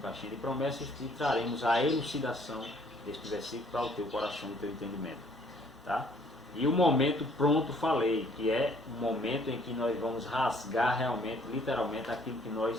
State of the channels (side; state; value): both; normal; correlation 0.61